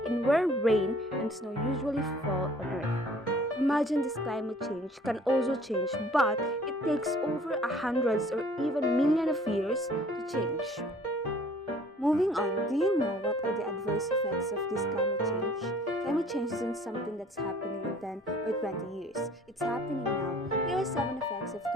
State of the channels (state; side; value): normal; both; correlation 0.53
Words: in where rain and snow usually fall on Earth. Imagine this climate change can also change, but it takes over hundreds or even millions of years to change. Moving on, do you know what are the adverse effects of this climate change? Climate change isn't something that's happening in 10 or 20 years. It's happening now. Here are 7 effects of